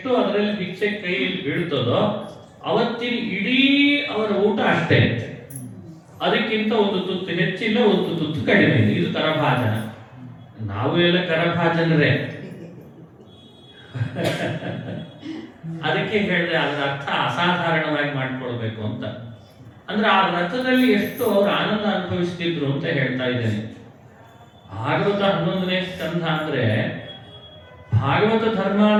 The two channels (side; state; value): both; identical; correlation 1.00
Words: ಅದರಲ್ಲಿ ಭಿಕ್ಷೆ ಕೈಯಲ್ಲಿ ಬೀಳ್ತದೋ ಅವತ್ತಿನ ಇಡೀ ಅವರ ಊಟ ಅಷ್ಟೇ. ಅದಕ್ಕಿಂತ ಒಂದು ತುತ್ತು ಹೆಚ್ಚಿಲ್ಲ, ಒಂದು ತುತ್ತು ಕಡಿಮೆ ಇಲ್ಲ. ಇದು ಕರಭಾಜನ. ನಾವು ಎಲ್ಲ ಕರಭಾಜನರೇ. ಅದಕ್ಕೆ ಹೇಳಿದ್ರೆ ಅದರ ಅರ್ಥ ಅಸಾಧಾರಣವಾಗಿ ಮಾಡ್ಕೊಳ್ಬೇಕು ಅಂತ. ಅಂದ್ರೆ ಆ ರಥದಲ್ಲಿ ಎಷ್ಟು ಅವರು ಆನಂದ ಅನುಭವಿಸ್ತಿದ್ರು ಅಂತ ಹೇಳ್ತಾ ಇದ್ದೇನೆ. ಭಾಗವತ 11ನೇ ಸ್ಕಂಧ ಅಂದ್ರೆ ಭಾಗವತ